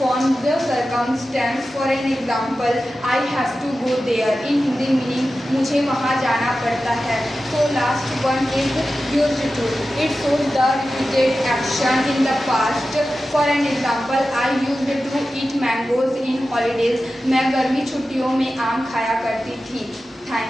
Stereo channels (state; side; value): normal; both; correlation 0.93